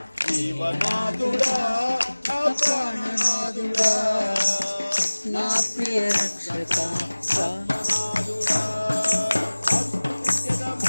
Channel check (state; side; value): inverted; both; correlation -1.00